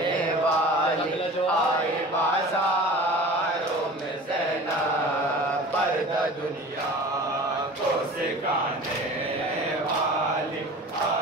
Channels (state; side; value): normal; both; correlation 0.39